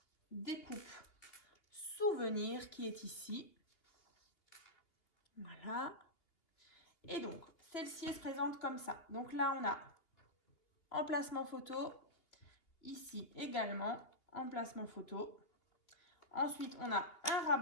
découpe souvenir qui est ici. Voilà. Et donc celle-ci se présente comme ça. Donc là, on a emplacement photo. Ici également, emplacement photo. Ensuite, on a un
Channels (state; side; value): late; right; 3.0 ms